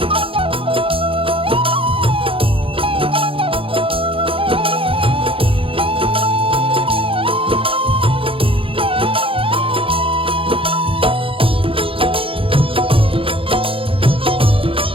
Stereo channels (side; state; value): left; late; 0.26 ms